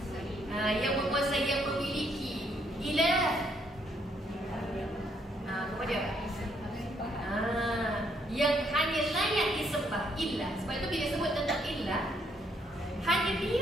yang menguasai, yang memiliki. Ilah, apa dia? Yang hanya layak disembah. Ilah. Sebab itu bila sebut tentang ilah, hanya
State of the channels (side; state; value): both; normal; correlation 0.71